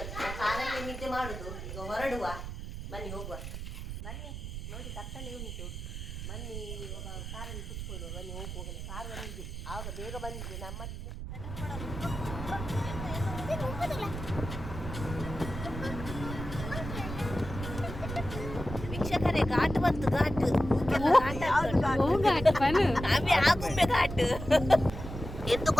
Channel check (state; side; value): noise; right; rumble, 7 dB below the sound